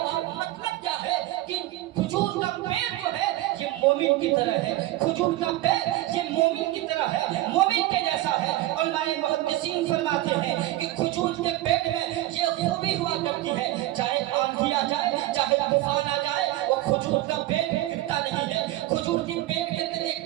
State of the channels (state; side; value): quieter; left; 16.2 dB